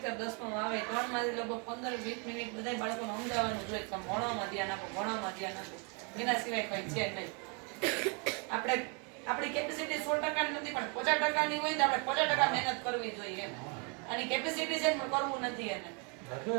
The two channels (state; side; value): quieter; left; 35.1 dB